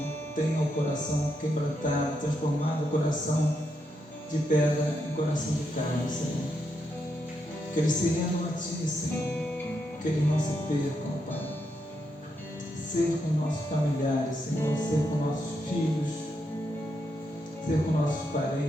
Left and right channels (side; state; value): both; normal; correlation 0.81